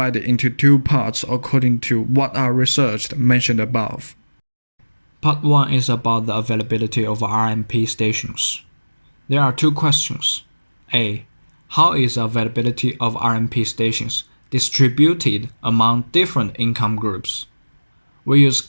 into 2 parts according to what are researched mentioned above. Part 1 is about the availability of RMP stations. There are 2 questions. A. How is the availability of RMP stations distributed among different income groups? We use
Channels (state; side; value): inverted; both; correlation -1.00